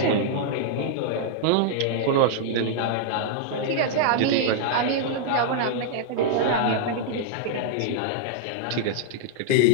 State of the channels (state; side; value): different; both; correlation -0.01